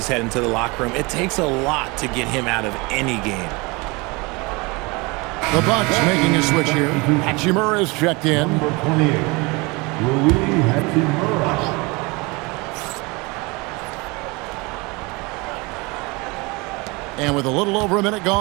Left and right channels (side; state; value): left; quieter; 26.2 dB